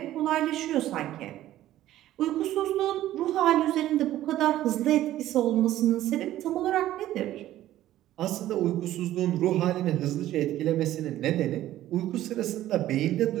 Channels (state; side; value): quieter; left; 13.8 dB